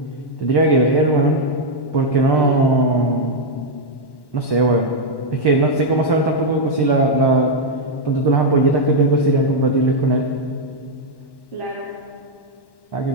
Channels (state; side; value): late; right; 1.1 ms